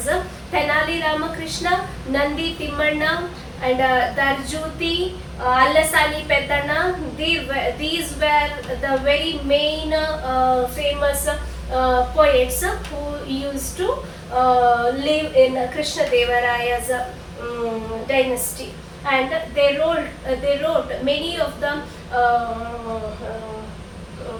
Tenali Ramakrishna, Nandi Timmanna and Darjuti, Allasani Peddana, these were the very main famous poets who used to live in Krishnadevaraya's dynasty, and they wrote many of the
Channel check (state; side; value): identical; both; correlation 1.00